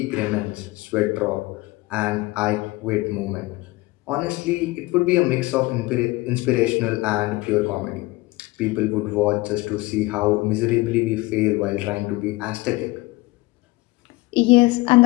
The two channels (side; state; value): right; quieter; 21.4 dB